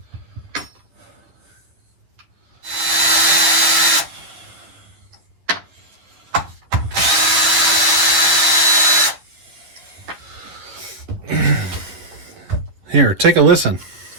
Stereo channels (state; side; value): late; left; 11 ms